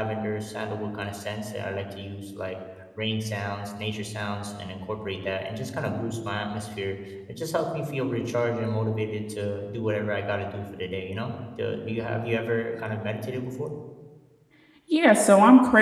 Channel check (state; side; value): identical; both; correlation 1.00